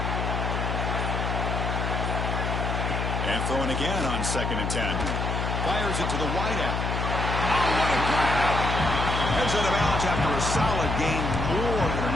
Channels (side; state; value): left; noise; hum, 1 dB below the sound